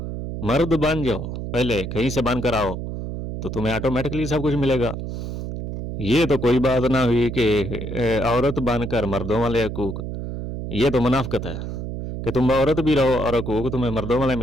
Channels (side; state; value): right; noise; hum, 6 dB below the sound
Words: पहले कहीं से बन कर आओ तो तुम्हें ऑटोमेटिकली सब कुछ मिलेगा। ये तो कोई बात ना हुई कि औरत बनकर मर्दों वाले हकूक़, ये तो मुनाफ़िक़त है कि तुम औरत भी रहो और हकूक़ तुम्हें मर्दों वाले